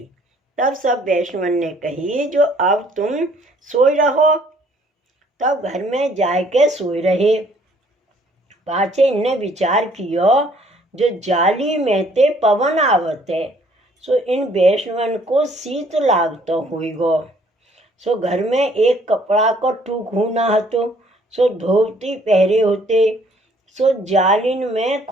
तब सब वैष्णवन ने कही, जो अब तुम सोई रहो। तब घर में जाके सोए रहे। पाछे इनने विचार कियो जो जाली में ते पवन आवत है, सो इन वैष्णवन को शीत लागतो होइगो। सो घर में एक कपड़ा को टूक होना हतो, सो धोती पहरे होते, सो जालिन में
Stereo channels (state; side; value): normal; both; correlation 0.61